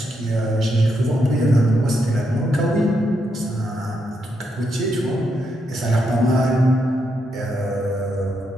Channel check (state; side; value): normal; both; correlation 0.80